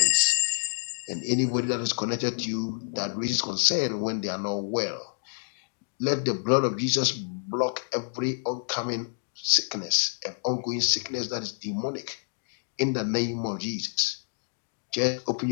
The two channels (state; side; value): silent; right; digital silence